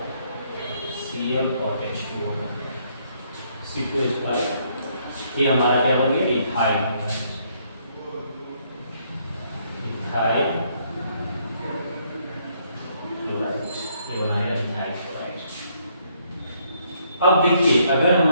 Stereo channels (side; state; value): both; inverted; correlation -0.70